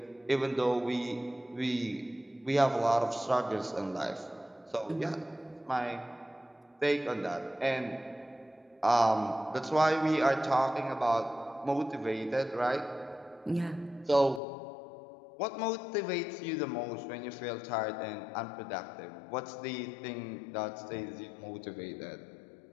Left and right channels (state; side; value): drops out; right; at 14.4 s